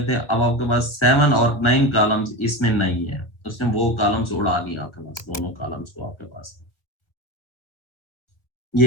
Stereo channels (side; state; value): right; late; 1.5 ms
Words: थे, अब आपके पास 7 और 9 कॉलम्स इसमें नहीं है, उसने वो कॉलम्स उड़ा दिया आपके पास, दोनों कॉलम्स को आपके पास।